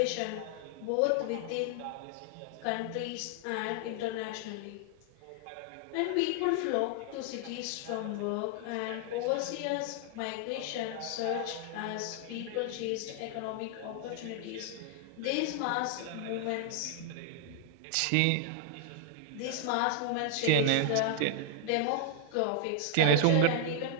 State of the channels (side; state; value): both; different; correlation 0.00